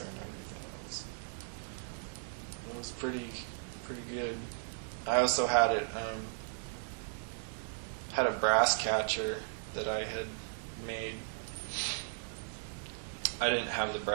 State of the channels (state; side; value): silent; left; 54 dB below the other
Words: and everything, it was pretty good. I also had had a brass catcher that I had made. I didn't have the